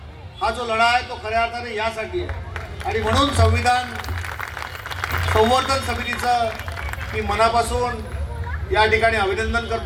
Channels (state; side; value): identical; both; correlation 1.00